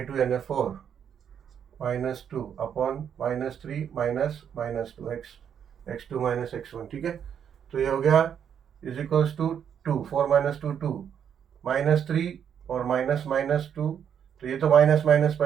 यानी 4 minus 2 upon minus 3 minus 2 x2 minus x1, ठीक है। तो ये हो गया is equals to 2, 4 minus 2 2 minus 3 और minus 2, तो ये तो माइनस माइनस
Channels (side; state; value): left; quieter; 8.4 dB